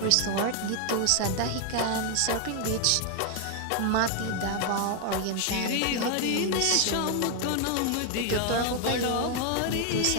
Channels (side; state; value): both; different; correlation 0.00